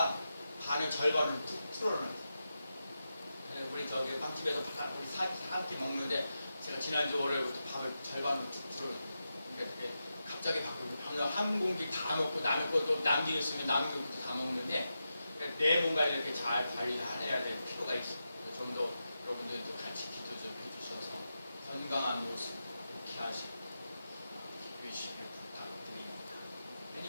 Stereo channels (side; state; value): both; inverted; correlation -0.89